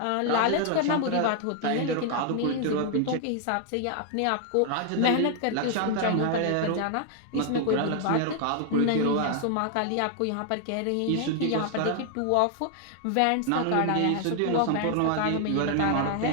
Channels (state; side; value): different; both; correlation 0.00